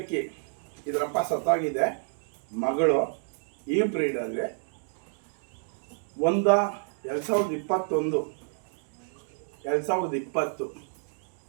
ಇದರಪ್ಪ ಸತ್ತಾಗಿದೆ, ಮಗಳು ಈ ಬ್ರೀಡಲ್ಲಿ 2020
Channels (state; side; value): silent; left; 58 dB below the other